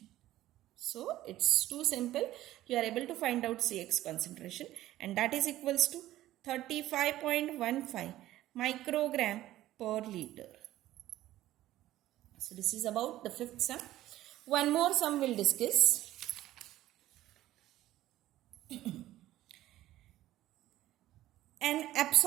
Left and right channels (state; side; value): quieter; left; 14.7 dB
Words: So it's too simple. You are able to find out CX concentration, and that is equals to 35.15 microgram per liter. So this is about the fifth sum. One more sum we'll discuss. An